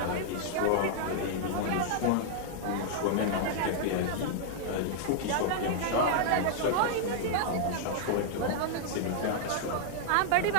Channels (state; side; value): different; both; correlation -0.01